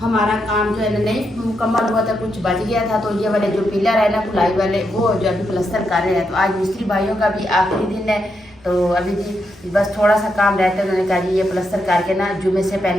काम जो है ना नहीं मुकम्मल हुआ था, कुछ बच गया था। तो ये वाले जो पिलर है ना खुलाई वाले वो जो अभी प्लस्तर कर रहे हैं। तो आज मिस्त्री भाइयों का भी आखिरी दिन है। तो अभी जी बस थोड़ा सा काम रहता है। उन्होंने कहा जी ये प्लस्तर करके ना जुमे से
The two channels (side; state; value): left; noise; hum, 29 dB below the sound